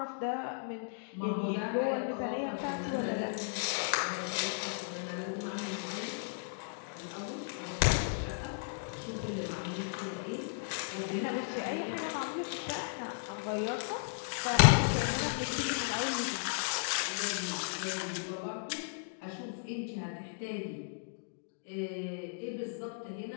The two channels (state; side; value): silent; right; digital silence